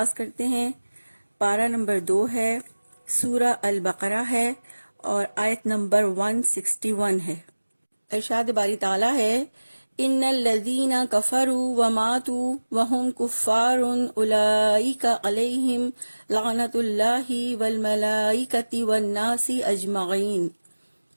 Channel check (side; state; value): both; inverted; correlation -1.00